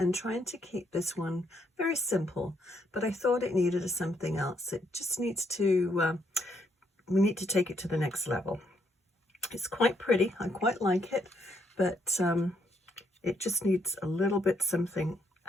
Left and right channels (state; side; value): normal; both; correlation 0.73